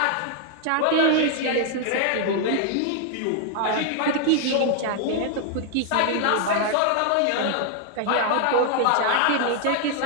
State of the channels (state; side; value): different; both; correlation 0.00